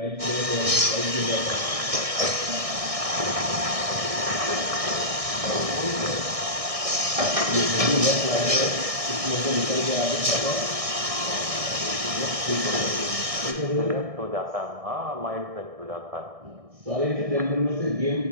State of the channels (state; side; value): late; left; 1.6 ms